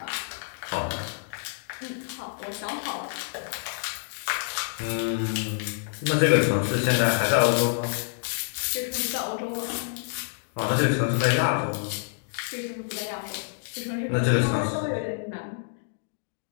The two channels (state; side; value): silent; right; digital silence